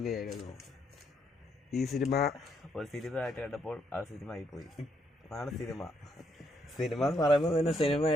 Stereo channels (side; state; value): both; normal; correlation 0.74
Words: ഈ സിനിമ ഒരു സിനിമയായിട്ട് കണ്ടപ്പോൾ ആ സിനിമ ആയിപ്പോയി. അതാണ് സിനിമ എന്ന് പറയുമ്പോൾ തന്നെ